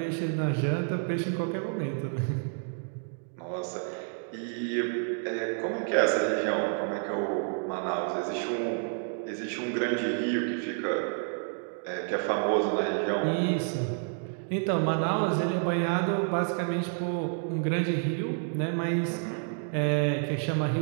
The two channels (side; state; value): left; silent; 58 dB below the other